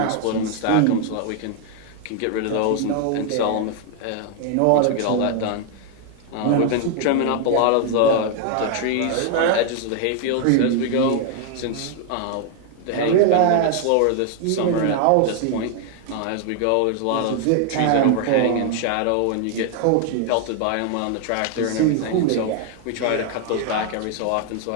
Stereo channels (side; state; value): both; different; correlation 0.00